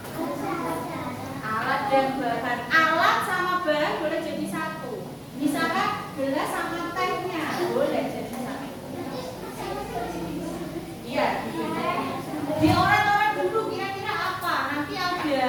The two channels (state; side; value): identical; both; correlation 1.00